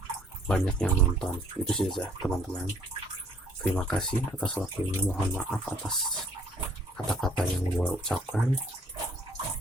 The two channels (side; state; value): both; normal; correlation 0.60